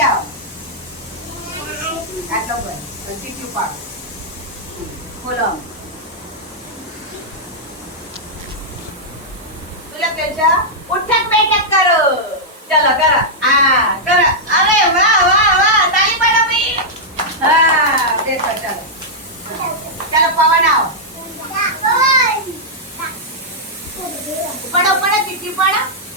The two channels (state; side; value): normal; both; correlation -0.08